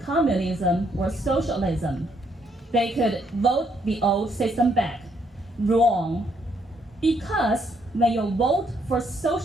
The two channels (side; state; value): both; normal; correlation 0.72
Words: communism or socialism, they could vote the old system back. Wrong. Because when you vote for